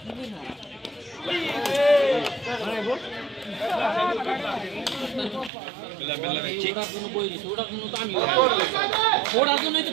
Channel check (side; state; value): left; drops out; at 5.5 s